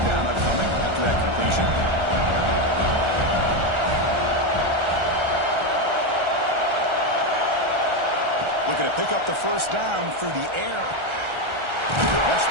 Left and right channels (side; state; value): left; late; 1.3 ms